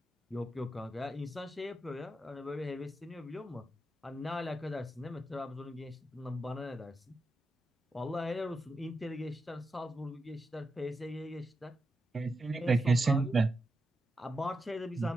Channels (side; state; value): both; normal; correlation 0.87